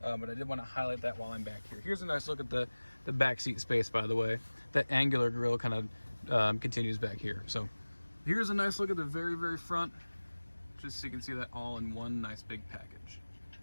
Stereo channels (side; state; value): both; inverted; correlation -1.00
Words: But I did want to highlight that while I'm back here. Here's a nice look at the back seat space, by the way. That angular grille kind of continues back here. So here's a nice look at the very, very front, just so you can see that all in one nice big package.